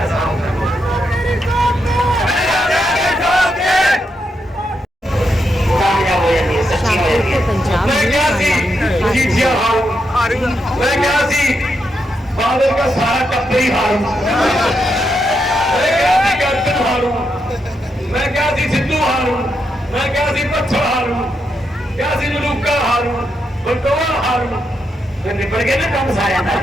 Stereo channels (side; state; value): both; normal; correlation 0.82